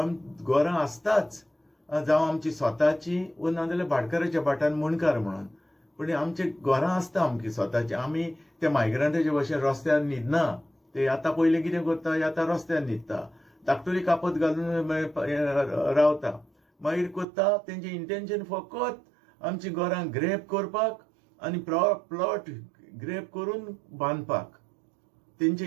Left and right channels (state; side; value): drops out; left; at 17.2 s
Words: घरां आसताच, जावं आमची स्वताची वा नाजाल्यार भाटकाराच्या भाटान मुणकार म्हणून, पूण आमची घरां आसता आमची स्वताची. आमी ते मायग्रंटाचे भशेन रस्त्यार न्हिदना. ते आतां पयलीं कितें करता, आतां रस्त्यार न्हिदता, धाकटुली कापत घालून रावता. मागीर कोत्ता तेंचे इंटेंशन फकत आमची घरां ग्रेप करपाक आनी प्लॉट ग्रेप करून बांदपाक, तेंचे